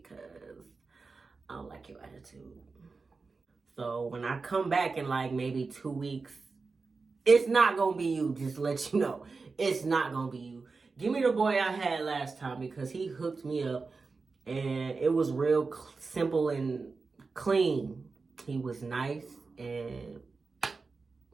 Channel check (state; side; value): quieter; left; 4.3 dB